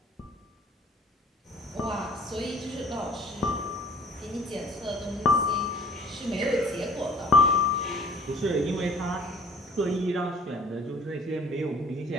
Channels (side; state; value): both; normal; correlation 0.52